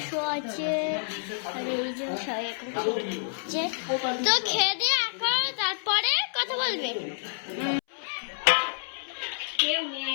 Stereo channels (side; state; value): right; silent; 59 dB below the other